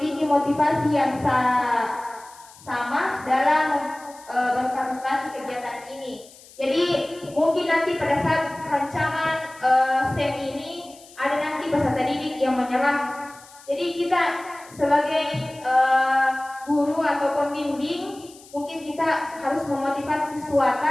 motivasi yang sama dalam berpartisipasi kegiatan ini. Jadi mungkin nanti pada saat rancangan SEM ini ada nanti peserta didik yang menyerah. Jadi kita sebagai guru atau pembimbing mungkin kita harus memotivasi siswa.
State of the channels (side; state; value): left; noise; hiss, 22 dB below the sound